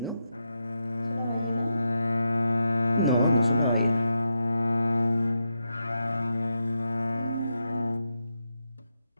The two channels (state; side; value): inverted; both; correlation -0.85